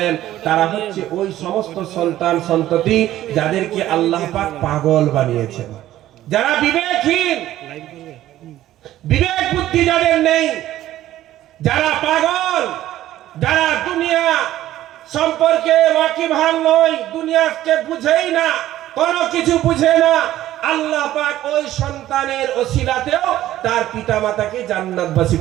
তারা হচ্ছে ওই সমস্ত সন্তান সন্ততি যাদেরকে আল্লাহ পাক পাগল বানিয়েছেন, যারা বিবেকহীন, বিবেক বুদ্ধি যাদের নেই, যারা পাগল, যারা দুনিয়া সম্পর্কে ওয়াকিবহাল নয়, দুনিয়াকে বুঝেই না, কোনো কিছু বুঝে না, আল্লাহ পাক ওই সন্তানের ওসিলাতেও তার পিতামাতাকে জান্নাতবাসী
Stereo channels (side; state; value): left; quieter; 13.8 dB